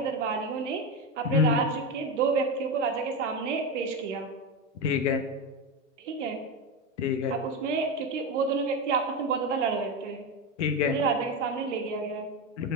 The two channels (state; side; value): normal; both; correlation 0.15